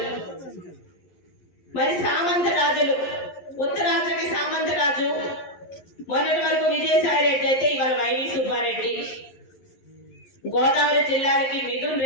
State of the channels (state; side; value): late; right; 11 ms